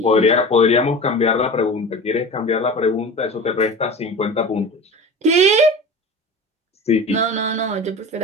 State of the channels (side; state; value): both; normal; correlation 0.33